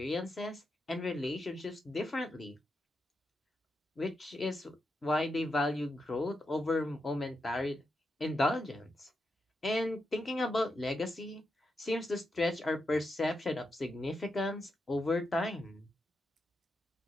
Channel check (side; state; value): both; normal; correlation 0.86